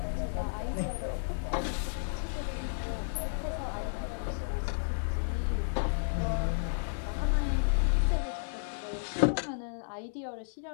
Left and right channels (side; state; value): right; silent; digital silence